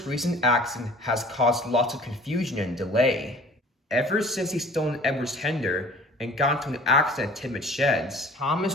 recent accident has caused lots of confusion and delay. Ever since he stolen Edward's tender and got into an accident at Tidmouth Sheds,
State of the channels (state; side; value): normal; both; correlation 0.48